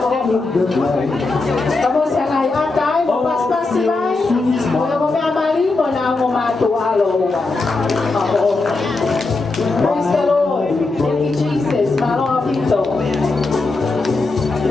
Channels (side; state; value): right; quieter; 3.5 dB